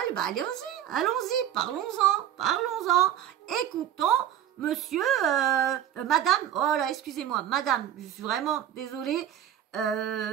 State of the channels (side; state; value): left; quieter; 10.6 dB